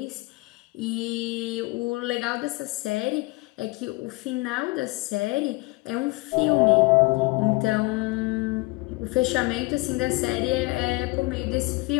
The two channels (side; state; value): right; quieter; 24.0 dB